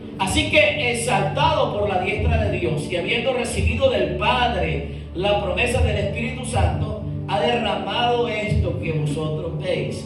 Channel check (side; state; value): both; identical; correlation 1.00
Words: Así que, exaltado por la diestra de Dios y habiendo recibido del Padre la promesa del Espíritu Santo, ha derramado esto que vosotros